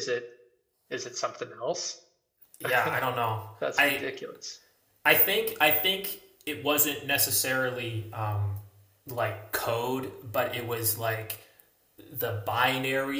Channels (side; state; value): both; identical; correlation 1.00